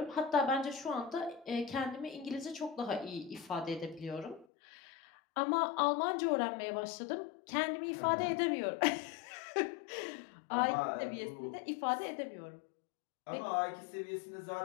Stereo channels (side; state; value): right; drops out; at 4.5 s